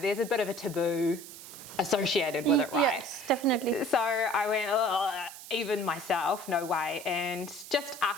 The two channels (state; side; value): noise; right; hiss, 14 dB below the sound